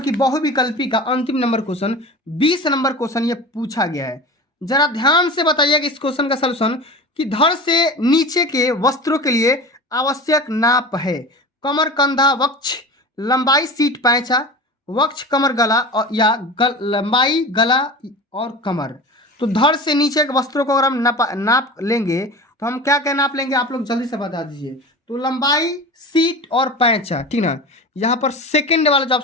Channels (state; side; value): normal; both; correlation 0.33